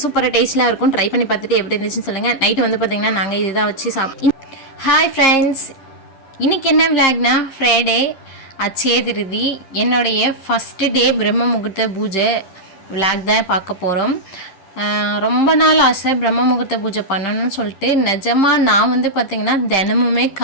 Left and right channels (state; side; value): late; right; 10 ms